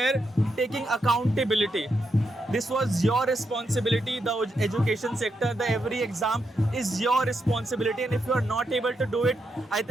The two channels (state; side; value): normal; both; correlation 0.83